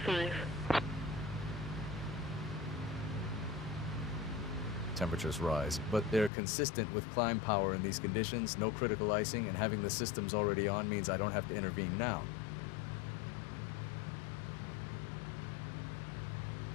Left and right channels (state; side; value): drops out; right; at 6.3 s